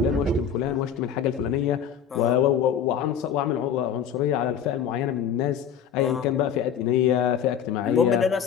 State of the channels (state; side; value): quieter; right; 8.1 dB